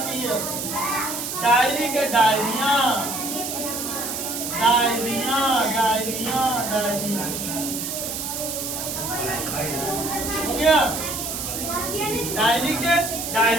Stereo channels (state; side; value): noise; right; hiss, 4 dB below the sound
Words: ES, डायरी के डायरियां, डायरियां, डायरियां, डायरियां, हो गया। डायरी के